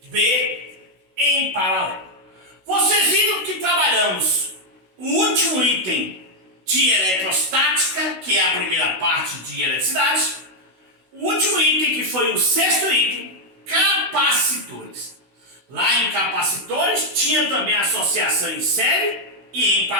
B, em paralelo. Vocês viram que trabalhamos o último item de eletrostática, que é a primeira parte de eletricidade. O último item, que foi o sexto item, capacitores. Lá em capacitores tinha também associação em série e em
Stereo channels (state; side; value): late; left; 16 ms